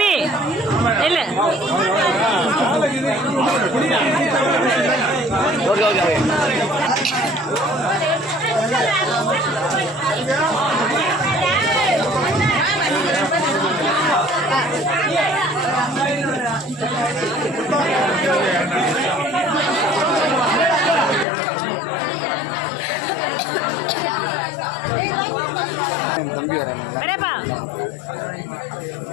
நில்லு. ஓகே ஓகே தம்பி வராங்க வரேப்பா.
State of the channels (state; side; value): drops out; right; at 21.2 s